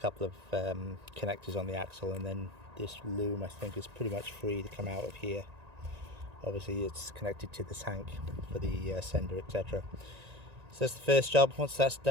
of connectors on the axle, and then this loom I think is pretty much free to come out of here. Obviously it's connected to the tank for the sender, etc. So that's the first job. Once that's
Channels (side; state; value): left; late; 1.9 ms